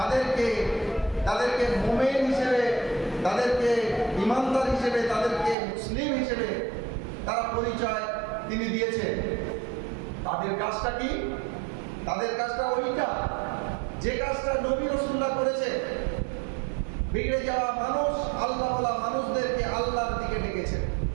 তাদেরকে মুমিন হিসেবে, তাদেরকে ঈমানদার হিসেবে, তাদেরকে মুসলিম হিসেবে তারা পরিচয় তিনি দিয়েছেন। তাদের কাজটা কি? তাদের কাজটা ওইটা যে কাজটা নবী রাসূলুল্লাহ করেছে। বিগড়ে যাওয়া মানুষ, আল্লাহওয়ালা মানুষদেরকে আল্লাহর দিকে ডেকেছে,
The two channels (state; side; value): drops out; left; at 5.6 s